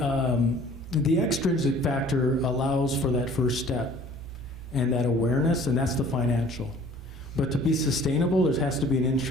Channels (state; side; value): normal; both; correlation 0.51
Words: extrinsic factor allows for that first step and that awareness, and that's the financial. But to be sustainable, there has to be an